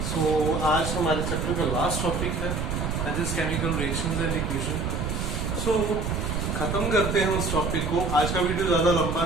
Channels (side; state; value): right; noise; rumble, 2 dB below the sound